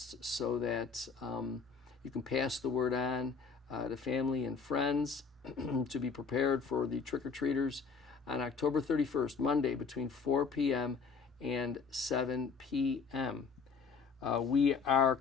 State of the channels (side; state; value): right; quieter; 5.3 dB